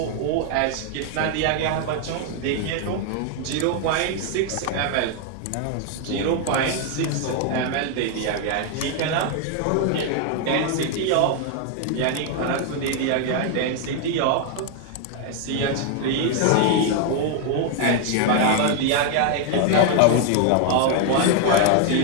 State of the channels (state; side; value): different; both; correlation 0.01